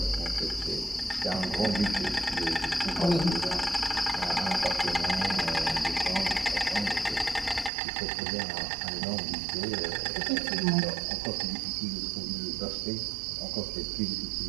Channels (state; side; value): drops out; left; at 7.7 s